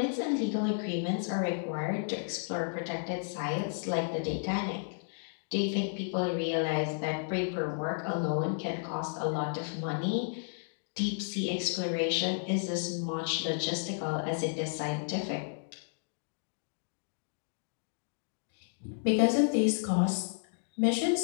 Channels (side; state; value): right; silent; digital silence